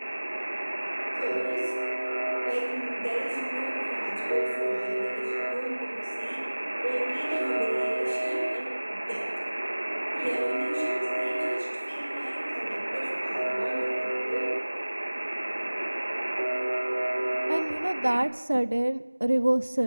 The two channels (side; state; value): both; inverted; correlation -1.00